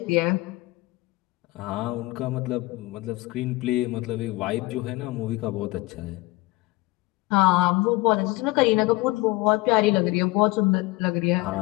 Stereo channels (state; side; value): quieter; right; 21.1 dB